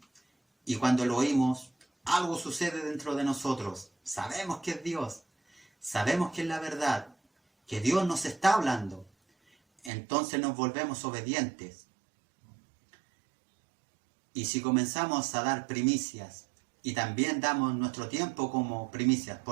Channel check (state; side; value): drops out; left; at 9.9 s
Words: y cuando lo oímos, algo sucede dentro de nosotros. Sabemos que es Dios, sabemos que es la verdad, que Dios nos está hablando. Entonces nos volvemos obedientes. Y si comenzamos a dar primicias, y también damos nuestro tiempo como primicias,